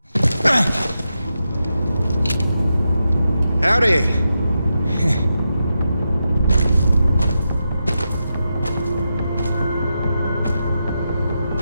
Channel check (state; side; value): inverted; both; correlation -0.87